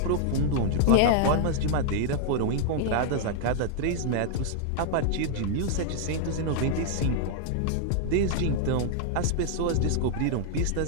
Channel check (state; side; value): different; both; correlation -0.01